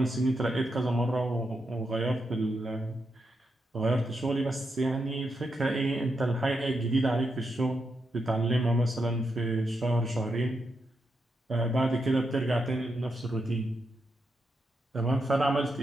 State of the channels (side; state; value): both; normal; correlation 0.84